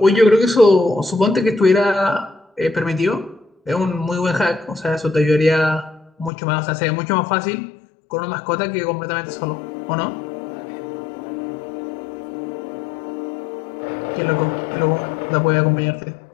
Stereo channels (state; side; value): drops out; right; at 6.3 s